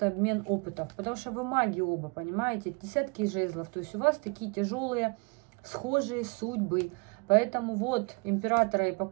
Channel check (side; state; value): left; quieter; 32.7 dB